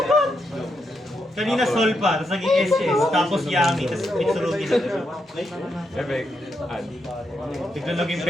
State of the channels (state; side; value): normal; both; correlation 0.82